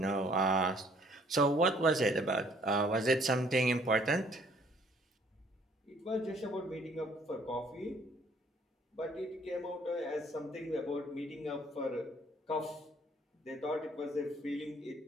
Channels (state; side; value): normal; both; correlation 0.60